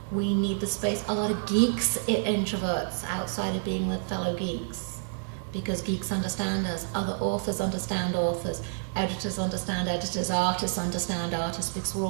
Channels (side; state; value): left; silent; 59 dB below the other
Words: We need the space. A lot of geeks are introverts outside of being with fellow geeks because geeks understand us. Other authors understand authors. Editors understand editors. Artists understand artists because we're